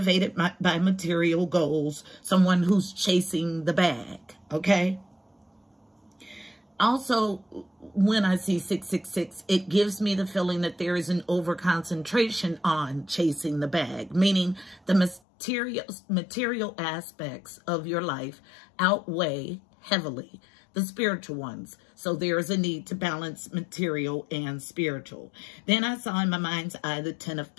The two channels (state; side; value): drops out; right; at 15.2 s